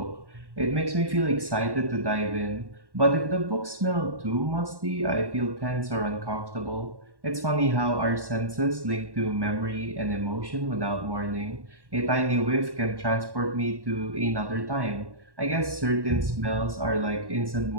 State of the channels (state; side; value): late; left; 1.1 ms